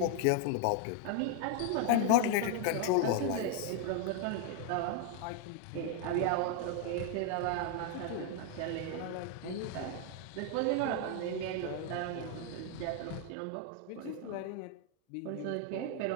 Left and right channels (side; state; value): both; different; correlation 0.00